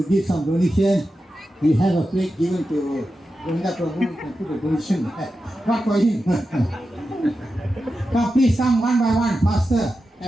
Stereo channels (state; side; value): normal; both; correlation 0.91